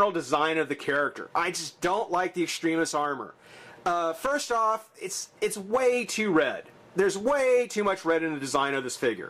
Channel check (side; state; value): both; identical; correlation 1.00